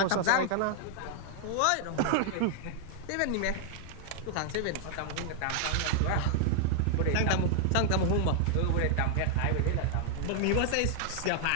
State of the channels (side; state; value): both; different; correlation 0.00